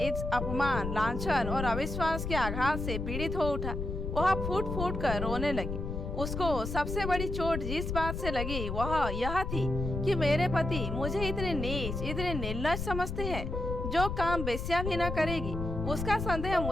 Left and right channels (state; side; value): noise; left; rumble, 4 dB below the sound